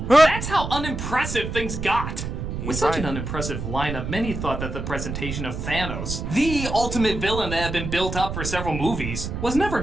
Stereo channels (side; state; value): right; noise; rumble, 5 dB below the sound